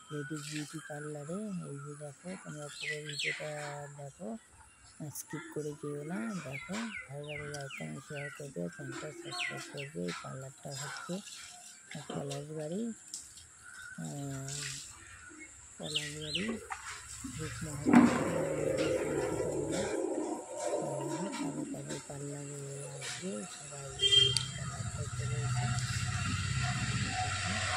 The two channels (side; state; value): both; identical; correlation 1.00